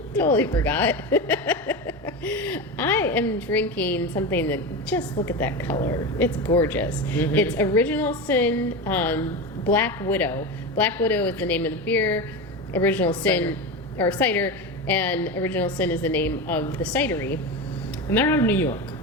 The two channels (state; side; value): normal; both; correlation 0.22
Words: Totally forgot. I am drinking something that, just look at that color. It's gorgeous. Mm-hmm. It's Original Sin Black Widow. Black Widow is the name of the beer. Original Sin, or cider, and Original Sin is the name of the cidery. And they're out of New York.